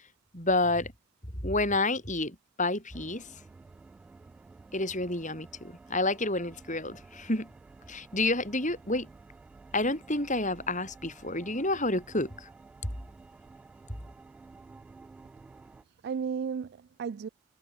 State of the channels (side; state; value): both; normal; correlation 0.13